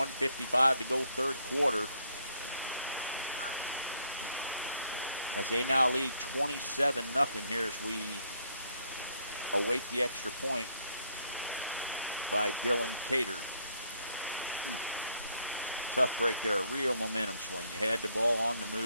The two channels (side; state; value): both; inverted; correlation -0.69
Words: to go, third quarter. As they now lead 27-0 here as we await the extra point by Dylan Cater. Tough break there, a real momentum swing. You had the ball on the